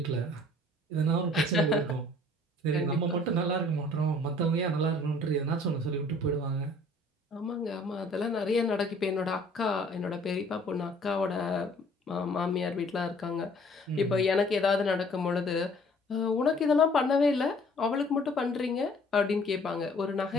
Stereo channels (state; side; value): normal; both; correlation 0.55